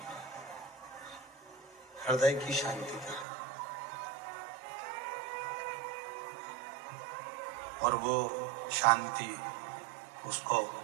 हृदय की शांति की कमी। और वो शांति उसको,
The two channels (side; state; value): left; drops out; at 3.2 s